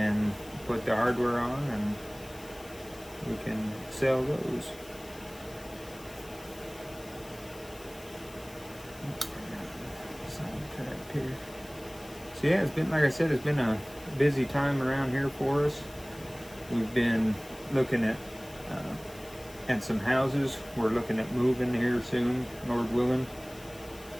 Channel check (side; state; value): left; noise; hiss, 20 dB below the sound